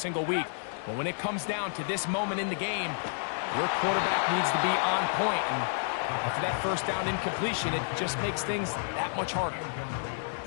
week. But when it comes down to this moment in the game, your quarterback needs to be on point. And after that first down incompletion, it just makes things that much harder.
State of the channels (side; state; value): right; silent; digital silence